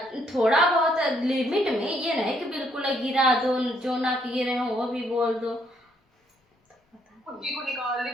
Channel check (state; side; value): normal; both; correlation 0.70